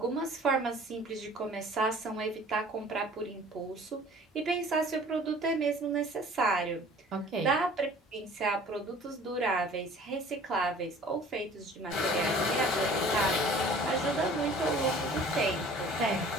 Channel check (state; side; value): normal; both; correlation 0.49